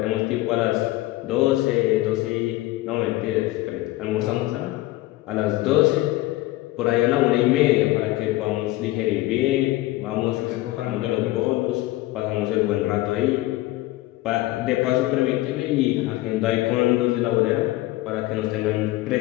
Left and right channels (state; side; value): quieter; right; 17.8 dB